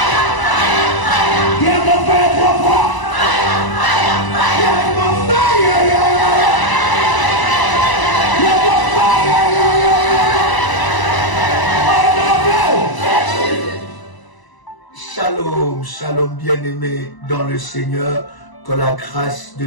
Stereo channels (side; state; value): right; late; 1.0 ms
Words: Shalom, shalom bien-aimés dans le Seigneur, que la grâce